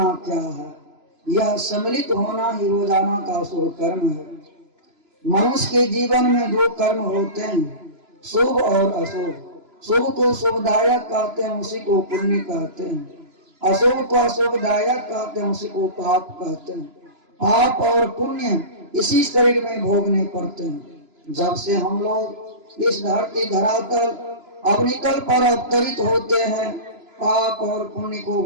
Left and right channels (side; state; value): left; late; 3.0 ms